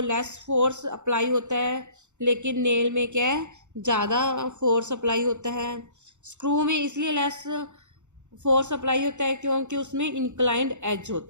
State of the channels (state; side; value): late; left; 0.84 ms